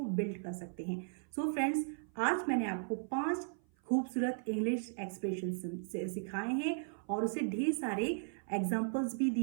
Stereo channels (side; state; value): left; silent; 53 dB below the other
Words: बिल्ड कर सकते हैं। सो फ्रेंड्स, आज मैंने आपको 5 खूबसूरत इंग्लिश एक्सप्रेशन सिखाए हैं और उसे ढेर सारे एग्जाम्पल्स भी